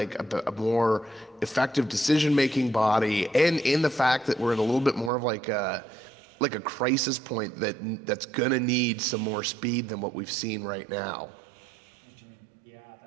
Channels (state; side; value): drops out; left; at 5.1 s